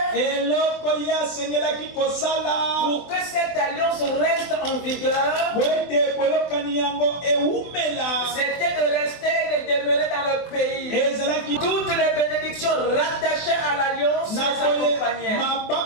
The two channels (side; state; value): right; late; 24 ms